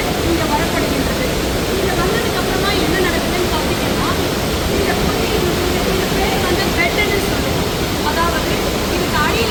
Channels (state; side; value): identical; both; correlation 1.00